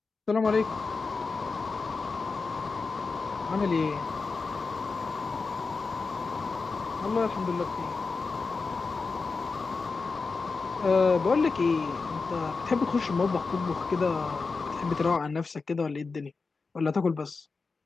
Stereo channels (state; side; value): quieter; right; 4.3 dB